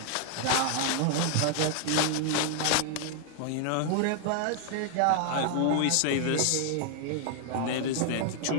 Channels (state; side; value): different; both; correlation 0.00